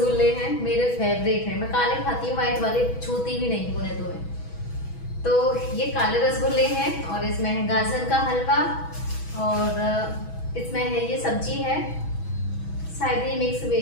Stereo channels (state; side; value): late; right; 6.2 ms